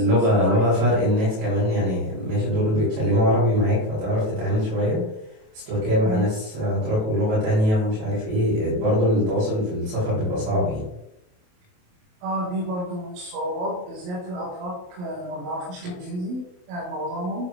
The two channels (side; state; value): left; late; 28 ms